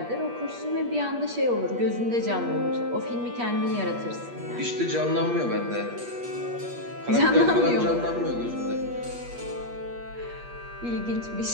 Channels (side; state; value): left; late; 8.4 ms